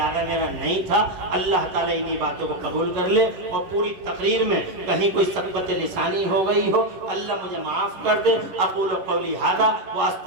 میرا نہیں تھا۔ اللہ تعالیٰ انہی باتوں کو قبول کر لے، اور پوری تقریر میں کہیں کوئی سقطِ لسانی ہو گئی ہو اللہ مجھے معاف کر دے۔ اقول قولی ھذا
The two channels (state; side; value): late; left; 10 ms